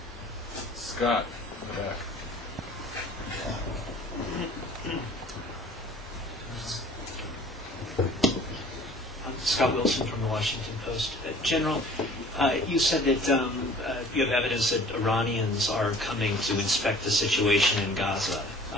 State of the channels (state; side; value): normal; both; correlation 0.49